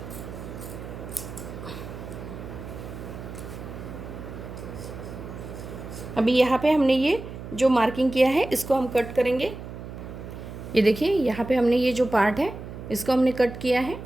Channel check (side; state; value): right; noise; hum, 11 dB below the sound